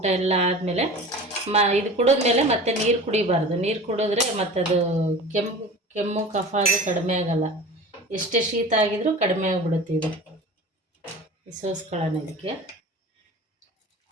ಎಲ್ಲ ಆದಮೇಲೆ ಇದು ಕುಡಿದ್ಮೇಲೆ ಮತ್ತೆ ನೀರು ಕುಡಿಬಾರ್ದು. ನೀರು ಕುಡಿದ್ರೆ ಮತ್ತದು ಕೆಮ್ಮು ಕಫ ಅದು ಕಡಿಮೆ ಆಗೋಲ್ಲ. ಎಷ್ಟೇ ಶೀತ ಆಗಿದ್ರೂ ಕಡಿಮೆ ಆಗಿಬಿಡುತ್ತೆ ಇದು. ಸೋಸ್ಕೊಳ್ಳೋಣ ಇದಕ್ಕೆ.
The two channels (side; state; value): both; normal; correlation 0.37